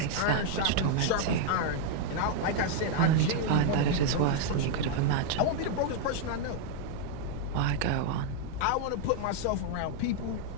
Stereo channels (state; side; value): different; both; correlation 0.00